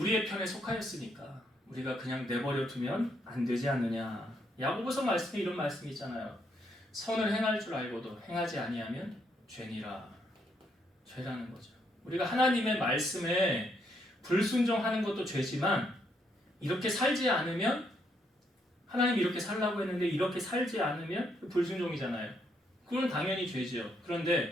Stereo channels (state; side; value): normal; both; correlation 0.75